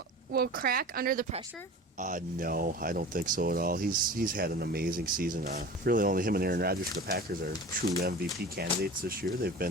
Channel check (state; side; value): normal; both; correlation 0.37